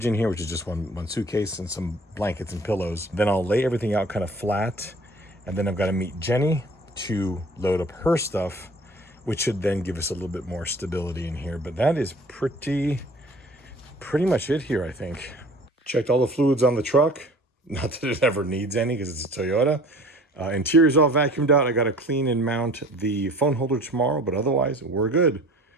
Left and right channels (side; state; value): both; normal; correlation 0.48